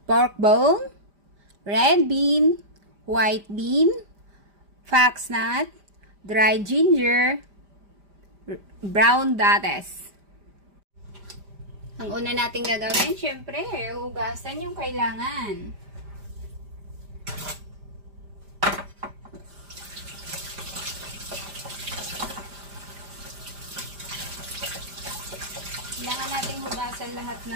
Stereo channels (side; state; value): left; late; 5.0 ms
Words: pork bone, red bean, white bean, foxnut, dried ginger, brown dates. Ang una nating gagawin, syempre, hugasan yung kailangan. Kailangan natin hugasan lahat